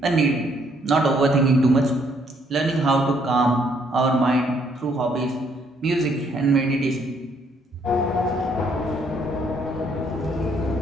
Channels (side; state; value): both; normal; correlation 0.68